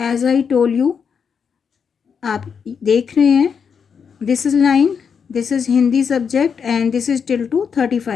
I told you, आप देख रहे हैं, this is line, this is Hindi subject and this is till to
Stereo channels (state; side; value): quieter; right; 6.6 dB